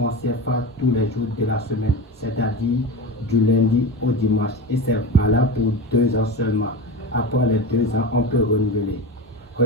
CFA tous les jours de la semaine, c'est-à-dire du lundi au dimanche, et c'est valable pour 2 ans seulement. Après les 2 ans, on peut renouveler.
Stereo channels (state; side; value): normal; both; correlation 0.25